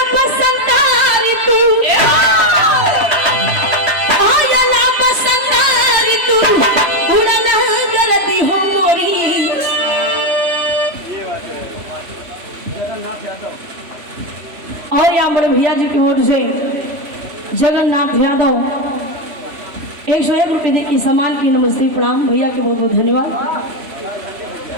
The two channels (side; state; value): left; late; 3.1 ms